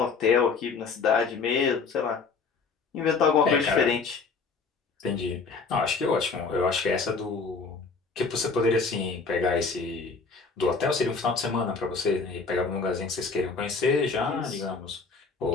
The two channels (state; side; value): quieter; right; 4.7 dB